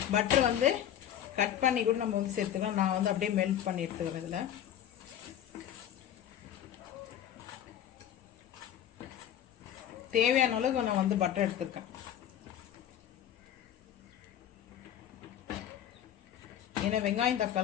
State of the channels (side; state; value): right; quieter; 10.6 dB